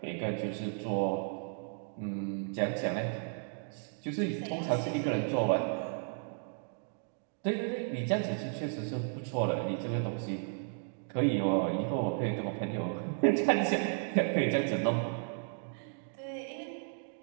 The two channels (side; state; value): left; silent; 55 dB below the other